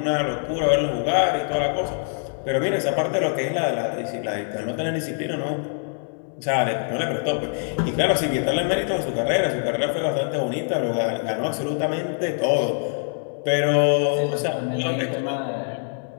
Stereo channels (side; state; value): right; silent; 56 dB below the other